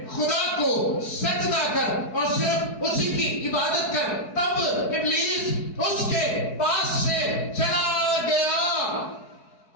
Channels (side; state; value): right; late; 4.7 ms